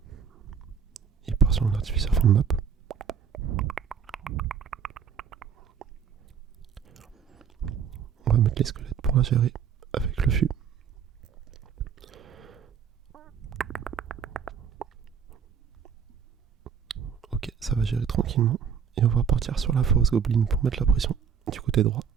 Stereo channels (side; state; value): left; quieter; 7.1 dB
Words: Il part sur un artificier fond de map. On va mettre les squelettes pour la gérer avec le fût. Ok, ça va gérer tranquillement. Et on va partir sur la force goblin pour mettre la pression du côté droit.